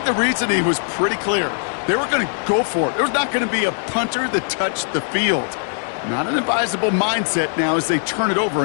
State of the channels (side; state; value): right; silent; digital silence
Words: the reasoning was pretty clear. They were going to go for it. There was not going to be a punter that touched the field. Not an advisable mindset now as they turn it over